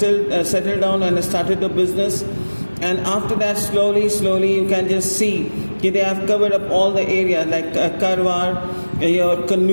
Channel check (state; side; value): inverted; both; correlation -1.00